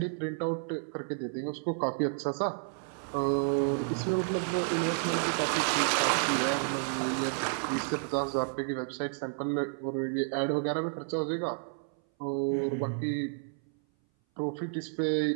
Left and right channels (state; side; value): silent; left; 57 dB below the other